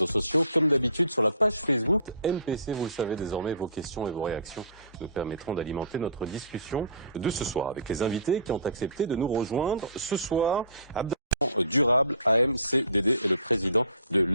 sociaux comme d'habitude sur la page Facebook MPC. Vous le savez désormais, vos questions et vos réactions nous permettront d'alimenter notre discussion de ce soir avec les invités qui ont accepté de nous rejoindre ce soir. Durable, AMCDD et le président de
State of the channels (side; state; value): both; inverted; correlation -0.47